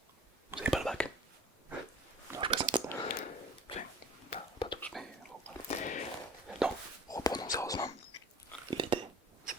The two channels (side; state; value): both; normal; correlation 0.43